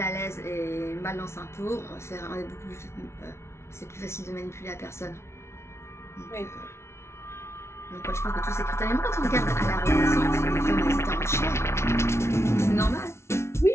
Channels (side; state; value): right; late; 0.13 ms